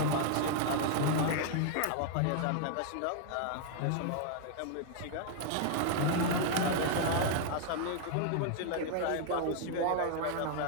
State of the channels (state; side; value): different; both; correlation 0.00